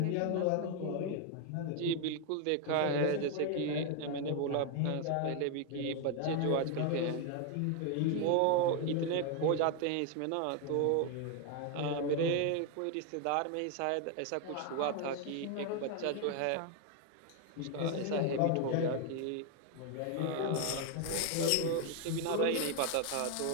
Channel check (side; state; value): both; different; correlation 0.01